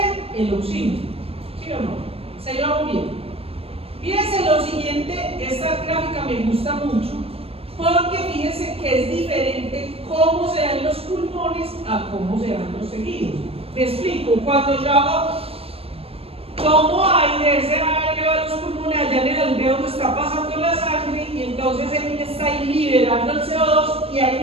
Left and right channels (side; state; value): left; late; 0.28 ms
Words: El oxígeno. ¿Sí o no? ¿Se llevamos bien? Fíjense lo siguiente, esta gráfica me gusta mucho, porque fíjense que es diferente cómo se dan los pulmones a cómo se dan los tejidos. Me explico, cuando yo tomo aire, ese aire va a los pulmones, allá en el alveolo está pasando la sangre y entonces él está ahí liberando el CO2 y ahí